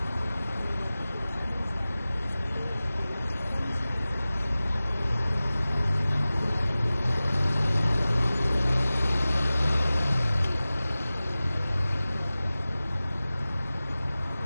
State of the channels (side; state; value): both; inverted; correlation -0.97